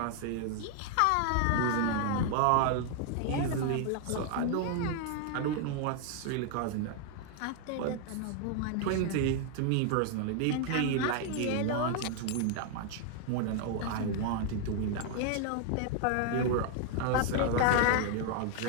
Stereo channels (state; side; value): different; both; correlation 0.00